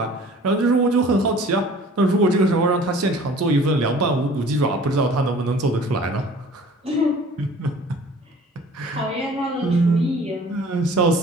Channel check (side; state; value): both; normal; correlation 0.48